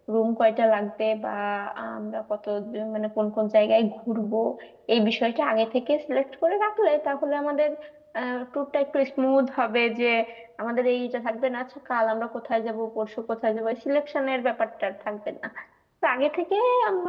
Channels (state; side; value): identical; both; correlation 1.00